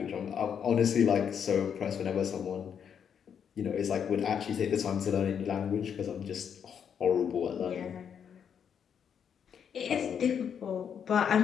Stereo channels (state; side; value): quieter; right; 7.8 dB